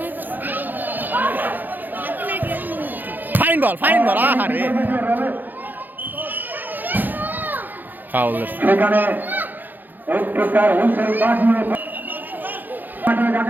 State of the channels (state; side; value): late; left; 0.087 ms